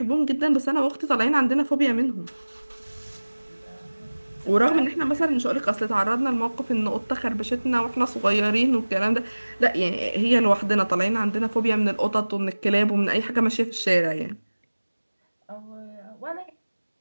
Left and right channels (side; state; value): both; inverted; correlation -1.00